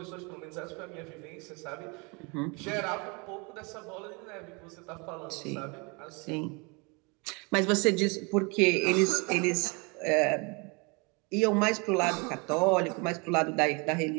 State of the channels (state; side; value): quieter; left; 30.1 dB